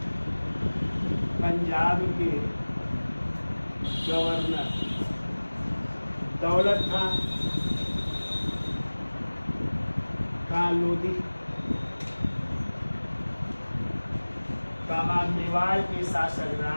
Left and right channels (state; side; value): inverted; both; correlation -1.00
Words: दौलत खां लोदी का मेवाड़ के शासक